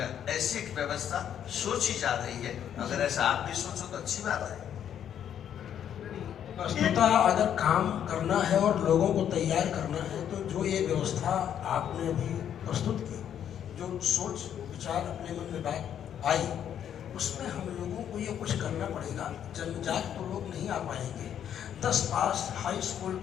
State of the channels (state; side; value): quieter; right; 9.5 dB